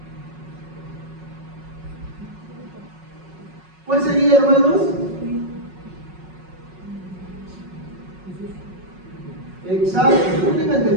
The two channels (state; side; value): late; left; 5.4 ms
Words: ¿Cuál sería, hermanos? Exacto, no tengan